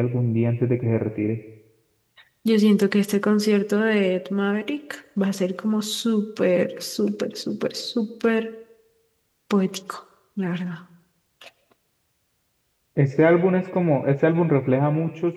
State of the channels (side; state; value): both; identical; correlation 1.00